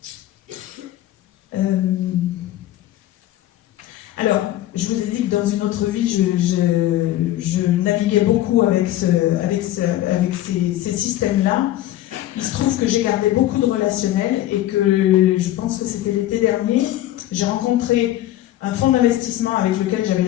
Alors, je vous ai dit que dans une autre vie, je naviguais beaucoup avec ces systèmes-là. Il se trouve que j'ai gardé beaucoup de relationnel et que je pense que c'était l'été dernier, j'ai rencontré un fonds d'investissement avec lequel j'avais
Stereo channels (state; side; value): quieter; right; 14.1 dB